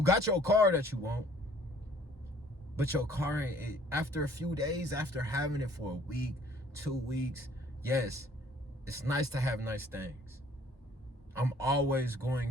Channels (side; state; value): both; normal; correlation 0.56